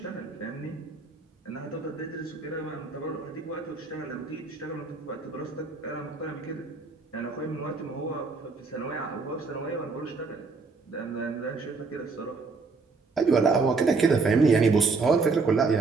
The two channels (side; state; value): left; quieter; 4.3 dB